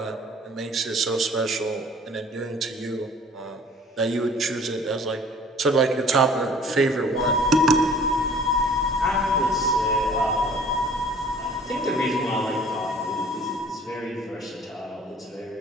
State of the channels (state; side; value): normal; both; correlation 0.51